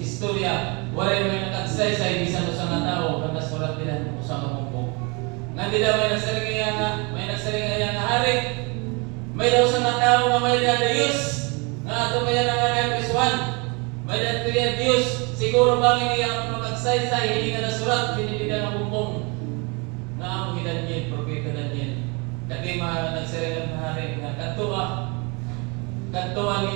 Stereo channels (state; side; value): quieter; left; 30.2 dB